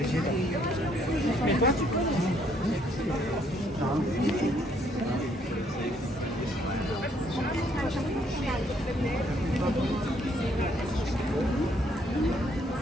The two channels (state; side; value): normal; both; correlation 0.68